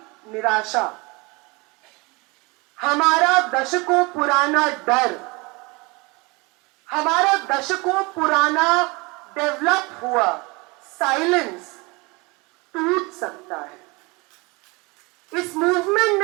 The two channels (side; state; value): left; quieter; 26.4 dB